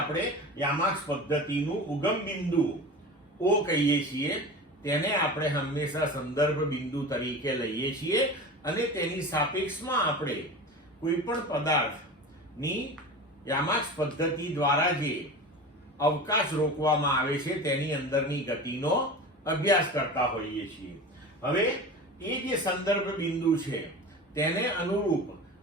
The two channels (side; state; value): both; normal; correlation 0.32